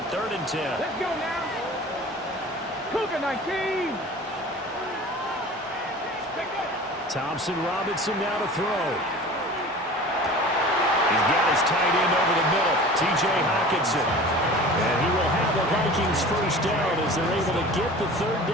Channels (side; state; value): both; normal; correlation 0.40